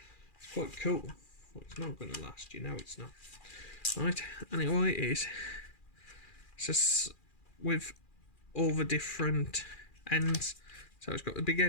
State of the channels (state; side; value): late; right; 2.4 ms